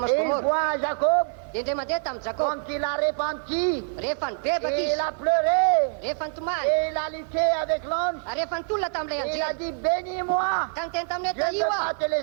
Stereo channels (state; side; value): silent; left; digital silence